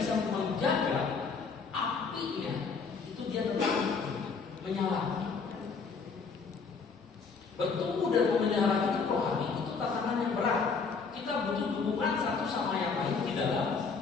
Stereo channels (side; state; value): right; quieter; 5.0 dB